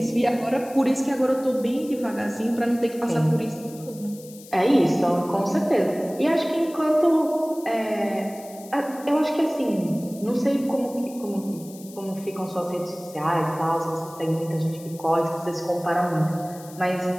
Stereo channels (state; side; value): noise; left; hiss, 20 dB below the sound